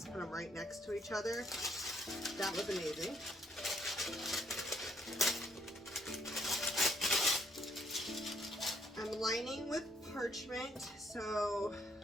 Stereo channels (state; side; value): normal; both; correlation 0.70